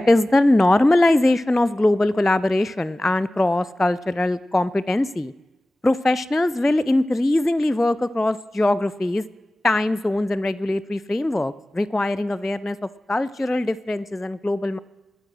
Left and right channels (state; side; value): normal; both; correlation 0.97